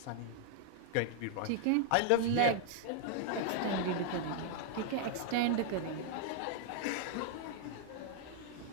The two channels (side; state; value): both; different; correlation 0.00